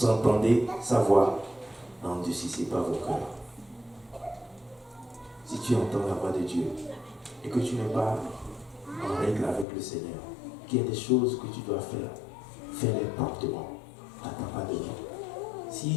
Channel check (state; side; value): drops out; right; at 9.7 s